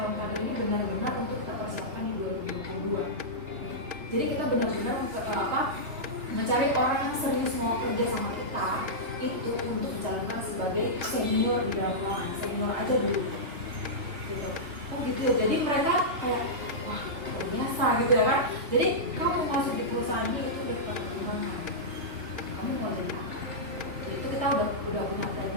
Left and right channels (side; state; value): left; late; 2.8 ms